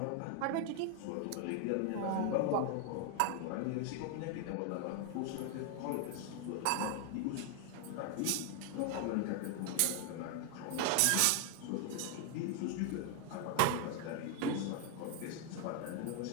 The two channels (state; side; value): different; both; correlation 0.00